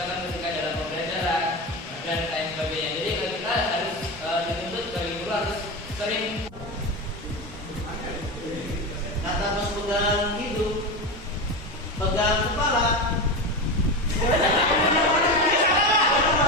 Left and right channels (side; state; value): both; normal; correlation 0.20